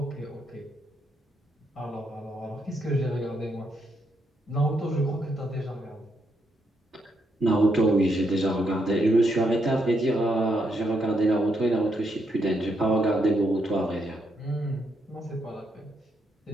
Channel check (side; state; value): both; normal; correlation 0.78